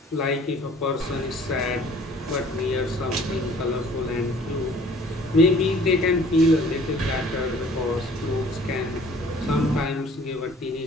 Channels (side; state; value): both; normal; correlation 0.53